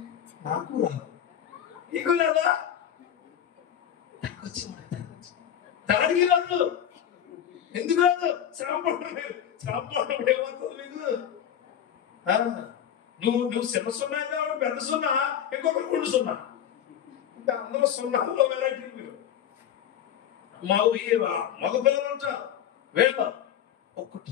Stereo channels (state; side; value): quieter; right; 9.7 dB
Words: నాకు రాదు, నీకు లేదా, దానికి రాదు. ఎందుకు రాదు? శ్రమ పడడం ఏమవుతుంది మీకు? నువ్వు చిన్న సున్నా అయితే పెద్ద సున్నా, ఇంకొకరు 2 సున్నా, ఇంకా అందరూ సున్నాలో వెరైటీ. మీరు మగ పిల్లలు ఉంటారు, వేళ ఒకటి